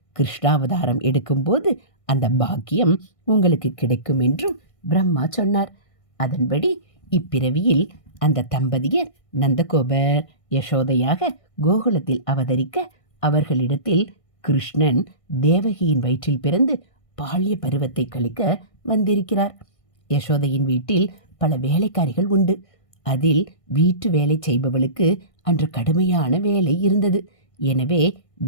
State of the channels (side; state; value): right; late; 1.6 ms